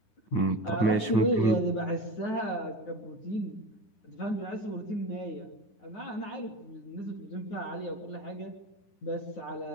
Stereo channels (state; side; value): late; right; 9.8 ms